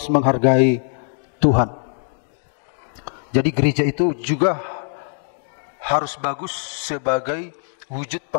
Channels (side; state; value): right; silent; digital silence